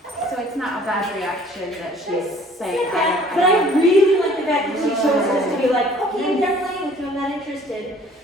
So it's not a bad reaction that she's saying. But I really like the fact that she chose us to be like, okay, I'm done playing with you, I'm not interested.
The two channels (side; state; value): both; normal; correlation 0.54